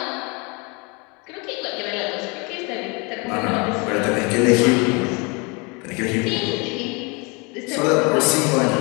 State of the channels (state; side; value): quieter; right; 30.1 dB